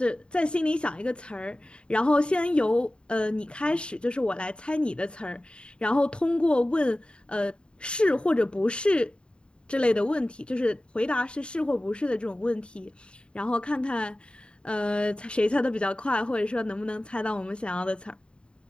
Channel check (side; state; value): right; late; 0.053 ms